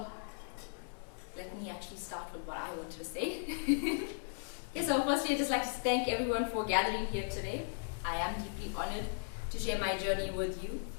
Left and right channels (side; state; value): right; silent; digital silence